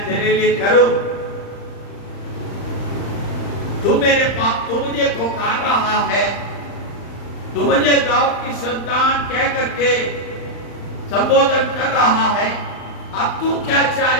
तेरे लिए करूं? तू मेरे पास, तू मुझे पुकार रहा है, तू मुझे दाऊद की संतान कह करके संबोधन कर रहा है। अब तू क्या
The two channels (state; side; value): late; right; 35 ms